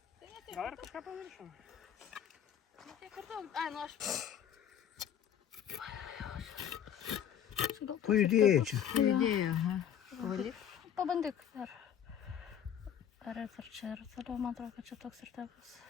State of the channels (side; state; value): right; quieter; 9.3 dB